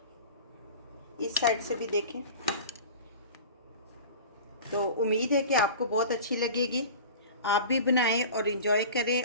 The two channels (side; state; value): both; inverted; correlation -0.37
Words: इस साइड से भी देखें। तो उम्मीद है कि आपको बहुत अच्छी लगेगी। आप भी बनाएं और इंजॉय